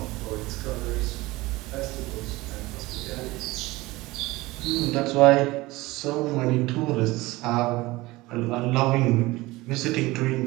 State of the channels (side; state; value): left; quieter; 20.3 dB